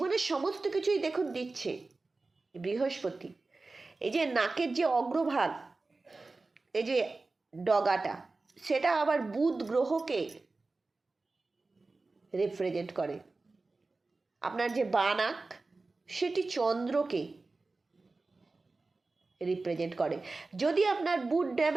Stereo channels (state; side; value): quieter; left; 3.5 dB